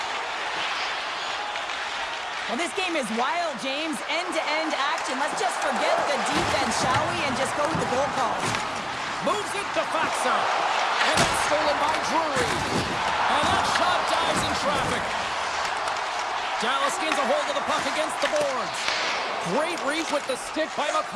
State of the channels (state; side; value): identical; both; correlation 1.00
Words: Well, this game is wild, James. End-to-end action. Let's just forget the defense, shall we, and just go with the goal call. Moves it to Faxa. And that's stolen by Drury. And that shot dives in traffic. Dallas gains a hold of the puck against the boards. Great reach with the stick by